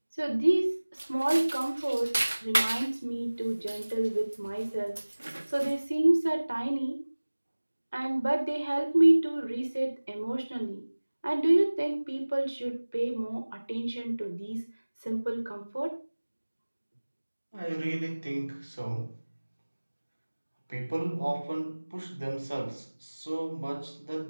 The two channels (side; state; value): both; inverted; correlation -1.00